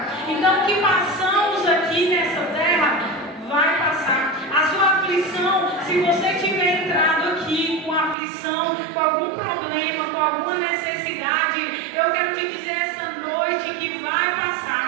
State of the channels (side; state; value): left; drops out; at 8.2 s